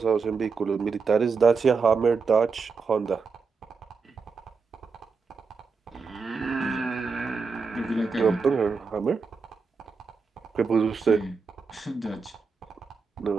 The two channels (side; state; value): left; quieter; 4.9 dB